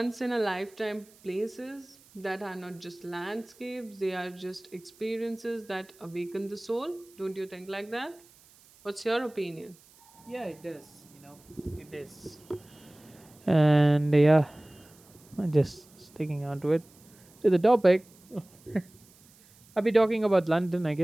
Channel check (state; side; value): noise; right; hiss, 27 dB below the sound